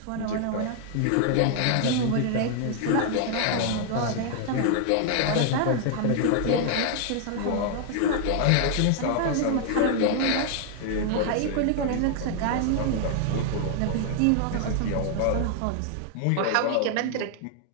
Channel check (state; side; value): different; both; correlation 0.00